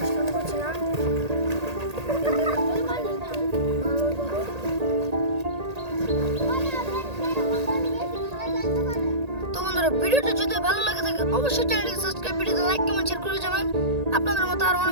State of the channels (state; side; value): late; left; 1.8 ms